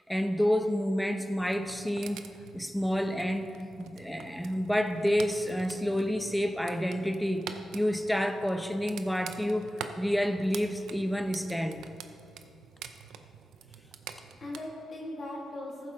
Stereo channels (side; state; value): both; normal; correlation 0.95